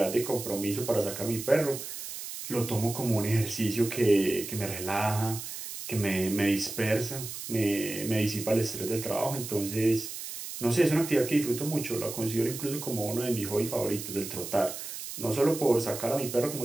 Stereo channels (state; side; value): noise; right; hiss, 8 dB below the sound